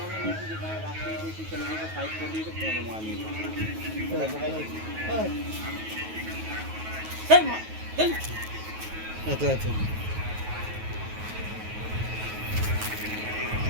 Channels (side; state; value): left; late; 9.3 ms